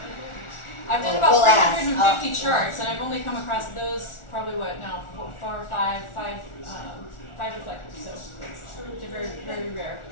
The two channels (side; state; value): right; late; 1.4 ms